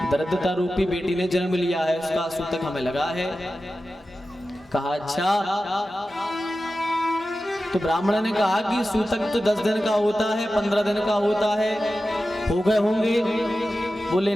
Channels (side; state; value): both; normal; correlation 0.94